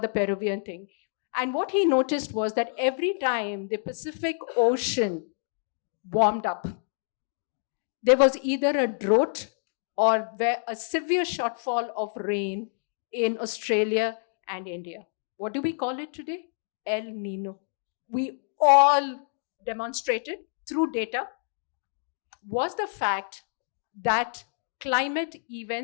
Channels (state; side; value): silent; right; digital silence